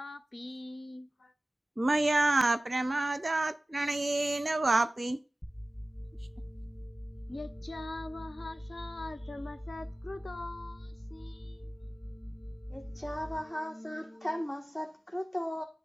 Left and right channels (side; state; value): both; normal; correlation 0.97